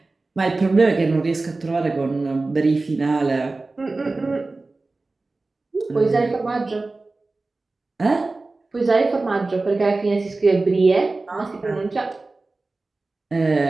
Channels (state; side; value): quieter; left; 3.4 dB